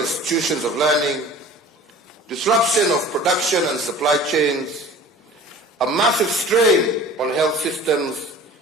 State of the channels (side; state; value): both; normal; correlation 0.43